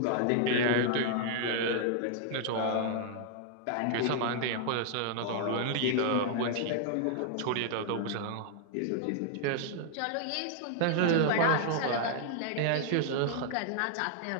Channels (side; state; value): both; different; correlation 0.00